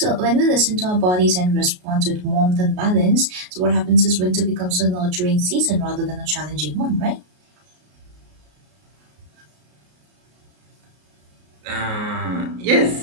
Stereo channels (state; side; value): late; left; 33 ms